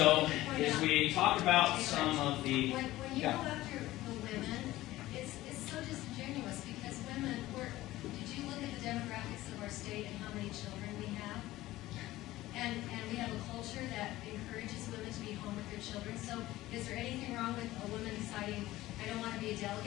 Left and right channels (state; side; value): quieter; right; 16.6 dB